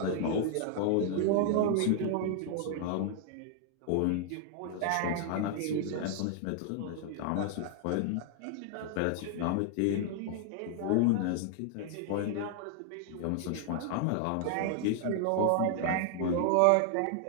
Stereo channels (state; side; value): different; both; correlation 0.00